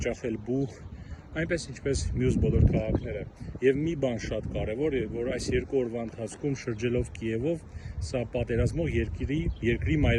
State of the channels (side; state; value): both; identical; correlation 1.00